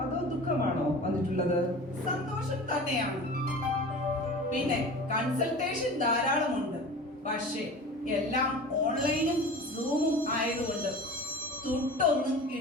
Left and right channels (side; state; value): both; normal; correlation 0.36